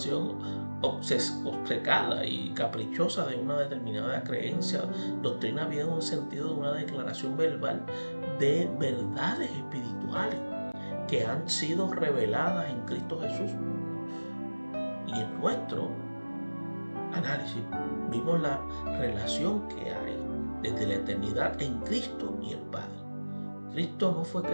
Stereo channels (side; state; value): both; inverted; correlation -1.00